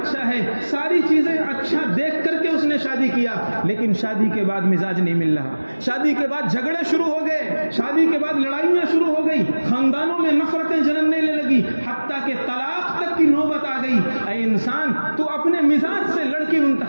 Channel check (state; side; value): inverted; both; correlation -1.00